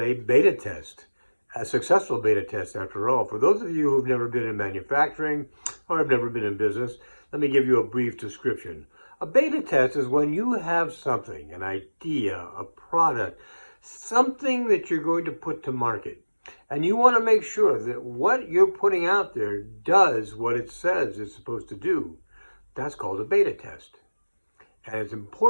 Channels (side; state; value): both; inverted; correlation -1.00